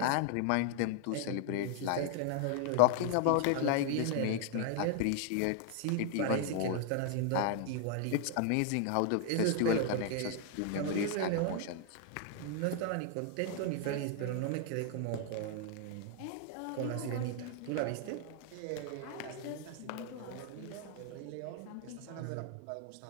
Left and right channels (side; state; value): both; different; correlation 0.00